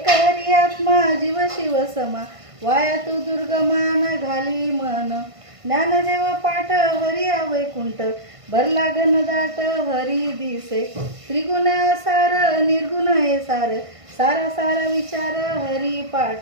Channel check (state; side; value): late; left; 1.5 ms